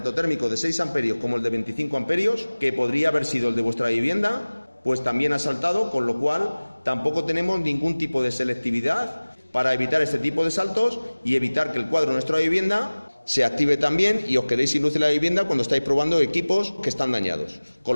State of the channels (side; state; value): both; inverted; correlation -1.00